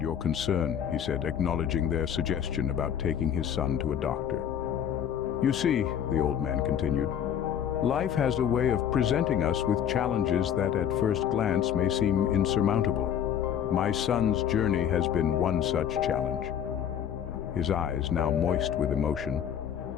your concern," he said, acknowledging their suggestion about taking his son to a doctor. "You see," the old man continued, "life has a way of presenting us with challenges that at first glance may seem insurmountable. My son's journey has been one such challenge." His eyes, now moist with emotion,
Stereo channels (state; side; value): quieter; right; 9.1 dB